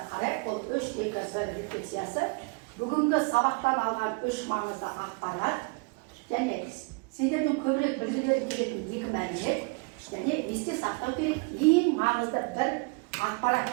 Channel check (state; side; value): quieter; left; 30.5 dB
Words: қарайық. Бұл 3-2-1 рефлексиясы. Бүгінгі сабақтан алған 3 маңызды ақпарат және сендердің көбірек білгілері келетін 2 мәлімет және есте сақтау керек ең маңызды бір